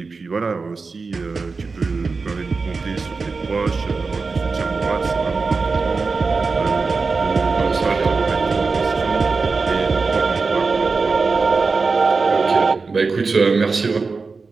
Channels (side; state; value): left; quieter; 4.4 dB